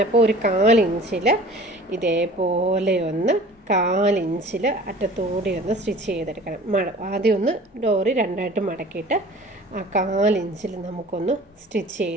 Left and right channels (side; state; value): both; normal; correlation 0.45